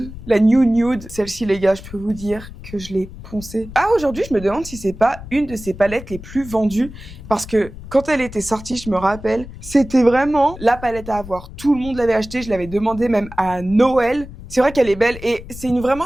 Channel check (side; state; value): left; noise; rumble, 14 dB below the sound